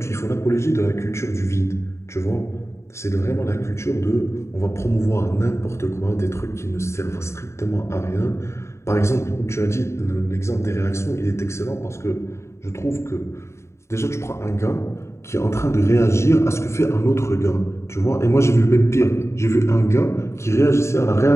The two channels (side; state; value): right; late; 0.13 ms